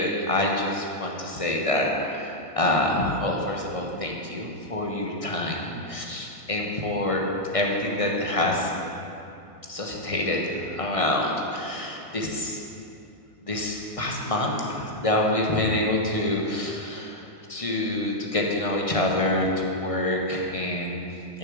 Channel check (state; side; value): late; right; 1.6 ms